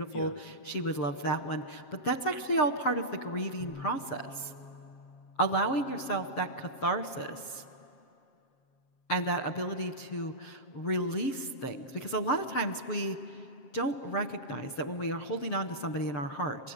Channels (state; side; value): late; right; 7.5 ms